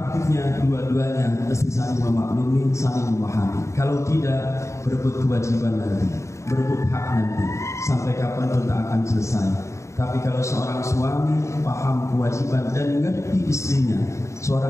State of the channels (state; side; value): late; right; 0.14 ms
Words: dua-duanya mesti saling memaklumi, saling memahami. Kalau tidak, berebut kewajiban nanti, berebut hak nanti, sampai kapan pun tak akan selesai. Tapi kalau seorang suami paham kewajiban dan mengerti istrinya,